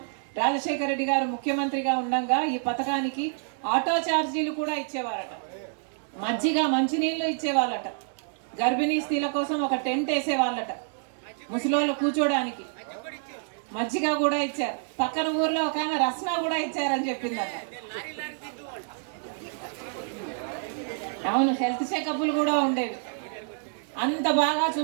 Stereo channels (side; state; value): left; silent; 60 dB below the other